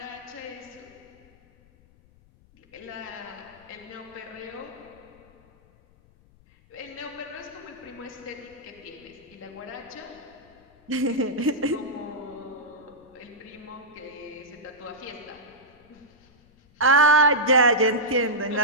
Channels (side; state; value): left; noise; rumble, 28 dB below the sound